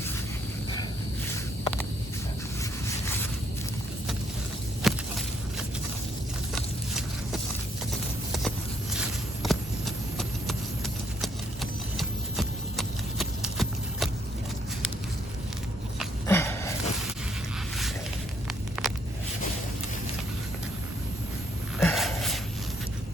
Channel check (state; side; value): normal; both; correlation 0.70